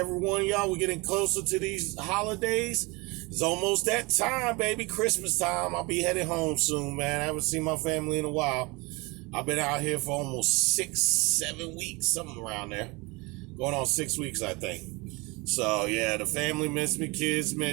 one of y'all. We're getting closer to these holidays. It's almost that time, baby. Christmas time. I'll be heading home soon, man. I haven't seen my family in a while. I've been out here for almost 6-7 weeks, something around there. Going on 6 weeks, I think. So, yeah, the family miss me. Kids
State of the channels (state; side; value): quieter; left; 25.9 dB